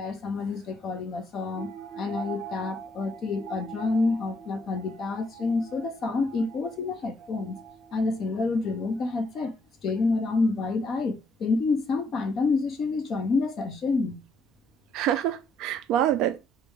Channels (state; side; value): normal; both; correlation 0.70